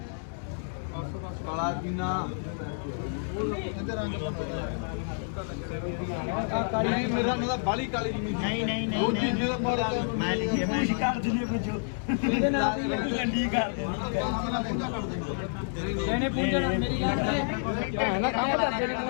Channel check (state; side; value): silent; right; digital silence